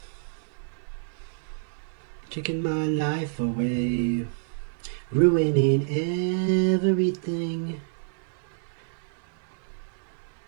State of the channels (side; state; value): left; silent; 59 dB below the other